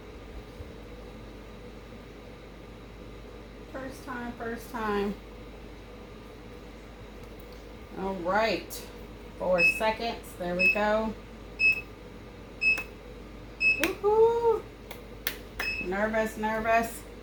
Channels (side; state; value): both; identical; correlation 1.00